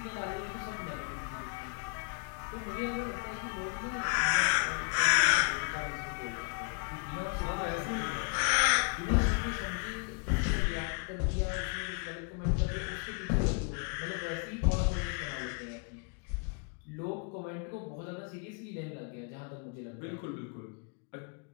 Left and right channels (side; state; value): right; quieter; 36.8 dB